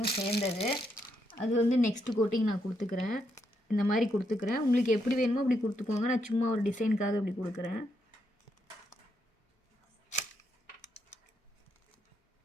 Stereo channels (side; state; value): both; normal; correlation 0.79